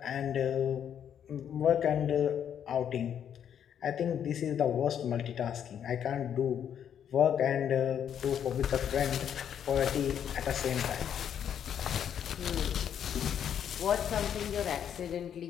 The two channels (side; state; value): right; quieter; 9.0 dB